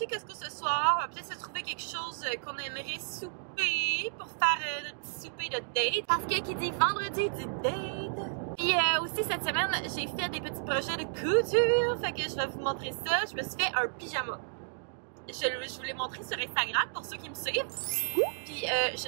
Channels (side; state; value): left; silent; digital silence